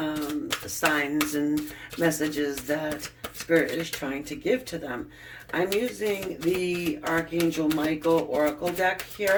signs and messages that Spirit is trying to give to them? I'm using the Archangel Michael Oracle deck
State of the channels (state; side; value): identical; both; correlation 1.00